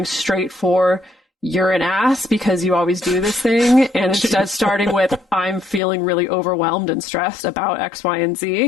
straight for you're an ass because you always do this thing, and instead starting with I'm feeling really overwhelmed and stressed about X, Y, and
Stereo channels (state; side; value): drops out; right; at 5.8 s